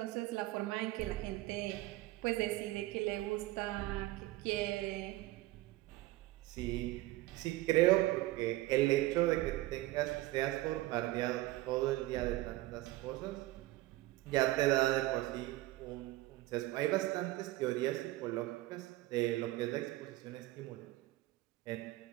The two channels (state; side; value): quieter; left; 18.0 dB